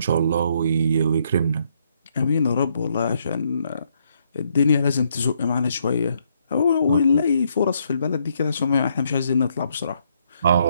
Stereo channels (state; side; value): inverted; both; correlation -0.72